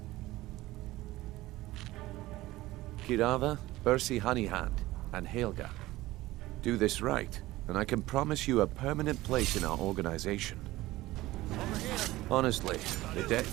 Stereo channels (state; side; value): quieter; left; 17.7 dB